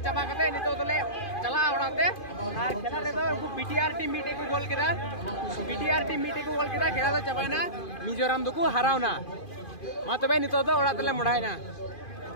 करते नितो तो ले चला उड़ाते और खेला रे तो बीटीआर टीम मीटे को गोल किदा बीटीआर टीम मीटे को गोल किदा खेला तो चाबाय ना मिजोरम दो को हराव ना मा तो भाई नितो तो उड़ाते ले मुड़ाय ना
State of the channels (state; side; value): late; right; 2.5 ms